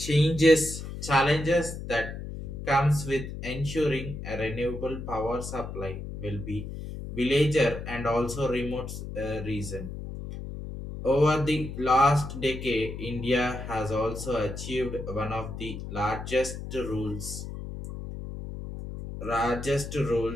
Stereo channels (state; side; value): noise; left; hum, 8 dB below the sound